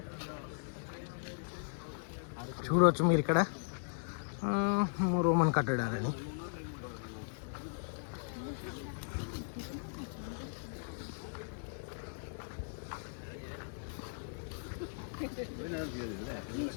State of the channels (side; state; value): right; silent; digital silence